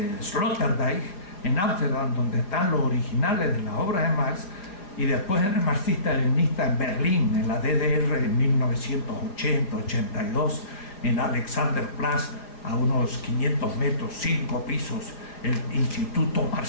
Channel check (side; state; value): right; late; 5.0 ms